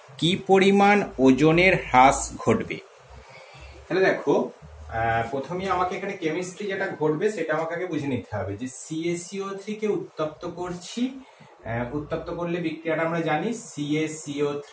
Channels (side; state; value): both; identical; correlation 1.00